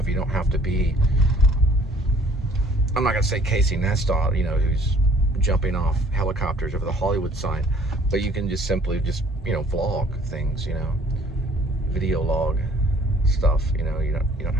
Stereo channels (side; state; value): both; normal; correlation 0.56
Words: You don't have to be, I'm not gonna say Casey Neistat, who's jumping off helicopters over the Hollywood sign, but you can just simply vlog things, video log stuff. You don't